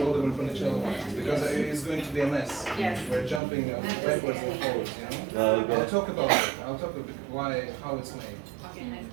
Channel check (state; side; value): drops out; left; at 3.4 s